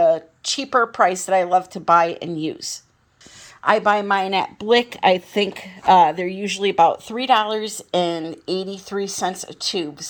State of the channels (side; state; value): both; identical; correlation 1.00